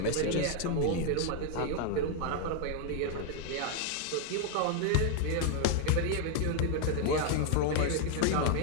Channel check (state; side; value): different; both; correlation 0.01